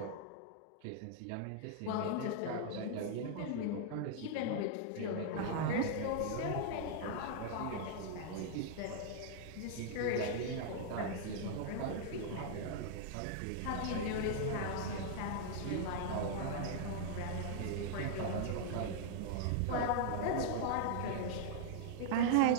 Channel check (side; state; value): both; different; correlation -0.01